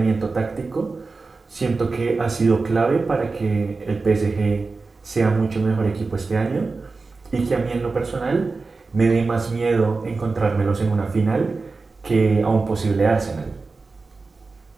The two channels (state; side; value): quieter; left; 4.0 dB